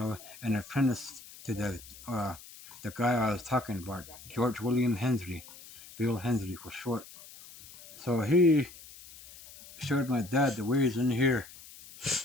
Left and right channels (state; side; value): noise; left; hiss, 18 dB below the sound